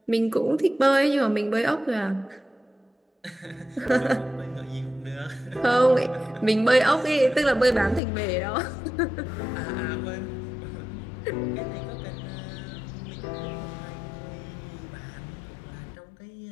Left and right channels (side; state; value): right; drops out; at 8.0 s